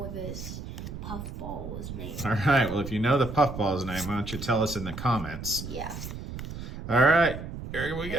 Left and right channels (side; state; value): right; noise; rumble, 9 dB below the sound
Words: this puffball's name. All right, well, if you know the puffball's name, why don't you tell us in the comments? Yeah. All right, here we